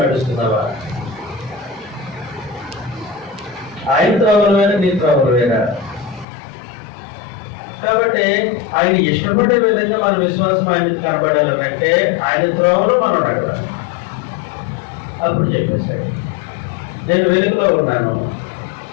నడుస్తున్నావా? ఆయన త్రోవలు వేరా, నీ త్రోవలు వేరా? కాబట్టి ఆయన ఇష్టపడే విధంగా మన విశ్వాసం ఆయన కనబడాలంటే ఆయన త్రోవలో మనం నడవాలి. అప్పుడు చెప్పేశాడు, నేను వెలుగులో ఉన్నాను,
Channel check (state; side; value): drops out; right; at 6.2 s